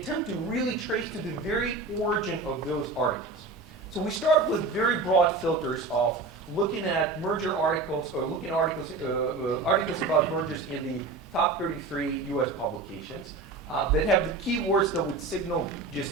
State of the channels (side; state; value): left; quieter; 3.6 dB